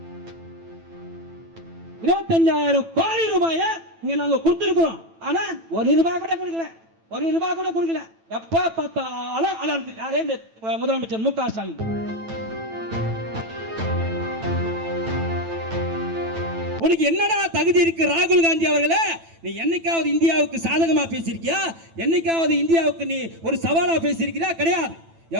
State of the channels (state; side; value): late; left; 9.0 ms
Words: 25,000 கோடி ரூபாயை இங்க நாங்க கொடுத்திருக்கிறோம். ஆனா ஒரு ரூபாய் கூட கொடுக்கல, ஒரு ரூபாய் கூட கொடுக்கல. எப்ப பார்த்தாலும் அலர்ந்து யாரே முதலமைச்சர் முக ஸ்டாலின். உனக்கு என்னடா தகுதி இருக்கு ராகுல் காந்தி அவர்களே? நீ என்னைக்காவது இந்தியாவுக்கு சாதகமா பேசியிருக்கியா? என்னைக்காவது இந்தியாவுக்கு நீ ஒரு சவாலா பேசியிருக்கியா? கிடையாது.